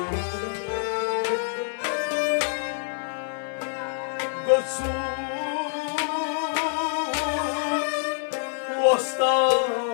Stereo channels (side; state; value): right; silent; 61 dB below the other